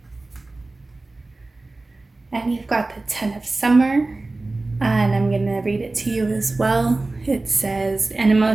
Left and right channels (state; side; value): quieter; left; 3.2 dB